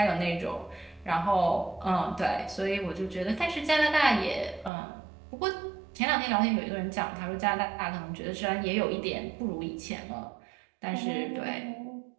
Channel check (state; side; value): drops out; left; at 4.7 s